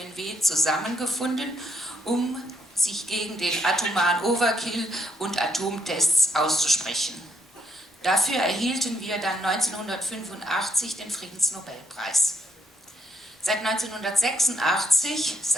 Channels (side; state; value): both; normal; correlation 0.75